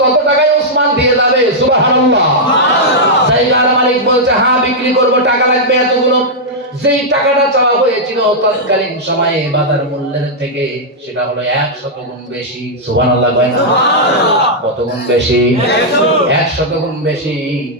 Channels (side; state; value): both; normal; correlation -0.06